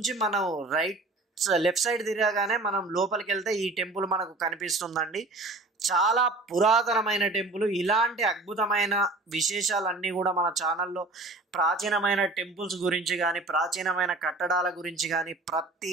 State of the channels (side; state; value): left; quieter; 3.1 dB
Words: మనం లెఫ్ట్ సైడ్ తిరగగానే మనం లోపలికి వెళ్తే ఈ టెంపుల్ మనకు కనిపిస్తుందండి. చాలా పురాతనమైన టెంపుల్. ఇలాంటి అద్భుతమైన విశేషాలన్నీ కూడా మన ఛానల్లో ప్రాచీనమైన టెంపుల్స్ గురించి కానీ ప్రాచీనమైన కట్టడాల గురించి కానీ